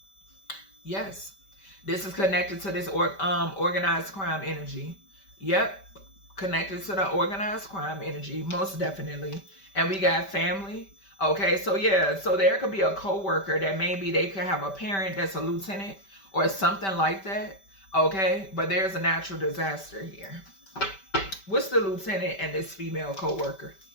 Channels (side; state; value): right; late; 5.1 ms